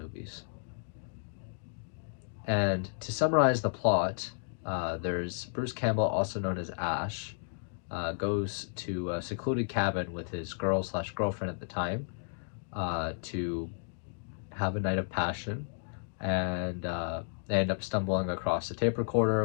And to summarize the plot, there's Bruce Campbell, also known as Ash, goes to a secluded cabin with his girl slash girlfriend at the time to have a night of passion, and they end up stumbling across a tape recorder,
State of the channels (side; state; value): right; silent; digital silence